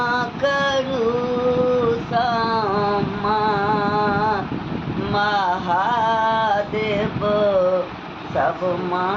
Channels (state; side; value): identical; both; correlation 1.00